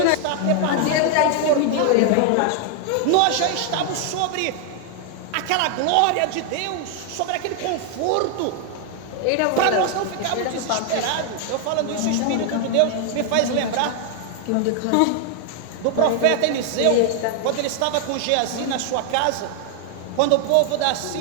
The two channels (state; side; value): different; both; correlation 0.00